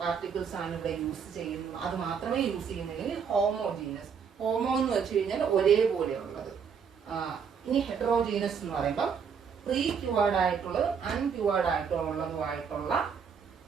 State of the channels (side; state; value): left; quieter; 6.6 dB